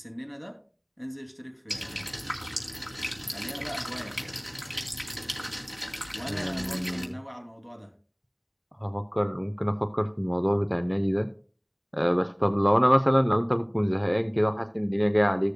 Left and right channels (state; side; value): identical; both; correlation 1.00